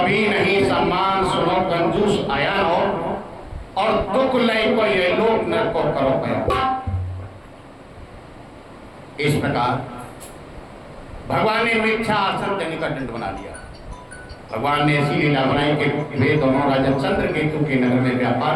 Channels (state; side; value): identical; both; correlation 1.00